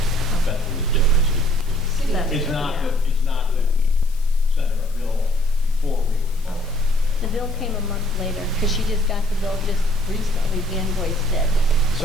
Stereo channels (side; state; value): left; noise; hiss, 24 dB below the sound